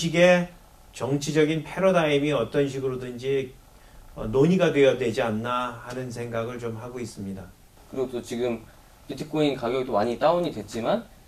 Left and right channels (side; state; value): both; identical; correlation 1.00